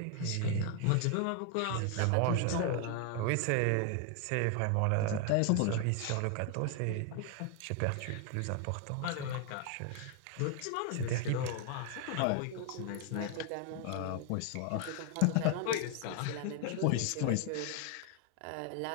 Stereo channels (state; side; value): different; both; correlation 0.01